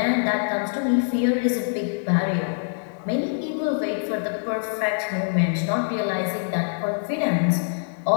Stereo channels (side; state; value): right; silent; digital silence